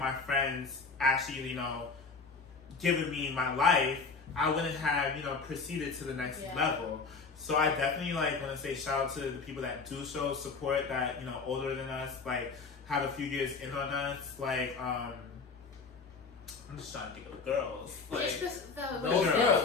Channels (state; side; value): quieter; right; 4.5 dB